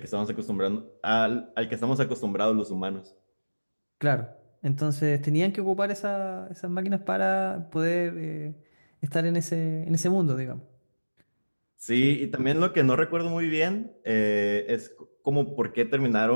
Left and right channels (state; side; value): inverted; both; correlation -1.00